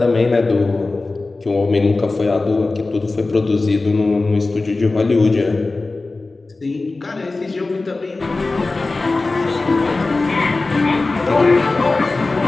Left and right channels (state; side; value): quieter; right; 3.4 dB